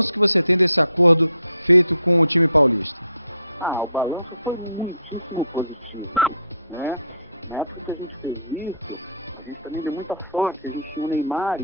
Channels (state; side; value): inverted; both; correlation -0.62